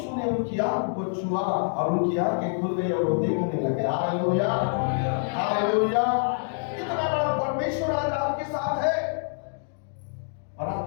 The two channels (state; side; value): silent; right; digital silence